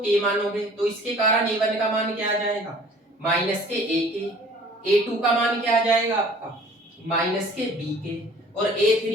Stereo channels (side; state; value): both; normal; correlation 0.50